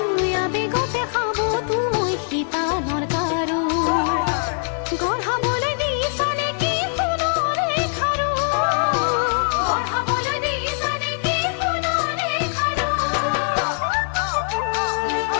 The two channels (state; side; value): silent; right; 60 dB below the other